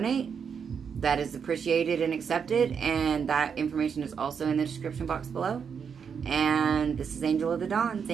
that is appreciated and accepted, and that information is also in the description box below. And this is Angel of the Dawn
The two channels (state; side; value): quieter; left; 6.7 dB